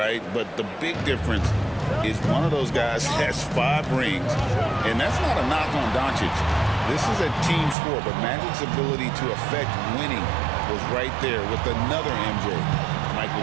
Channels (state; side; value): drops out; left; at 7.8 s